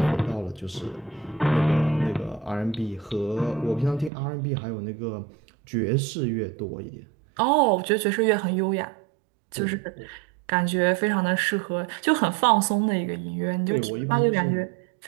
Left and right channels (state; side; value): drops out; left; at 4.1 s